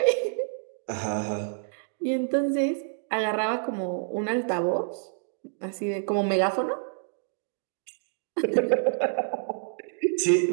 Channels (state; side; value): silent; left; digital silence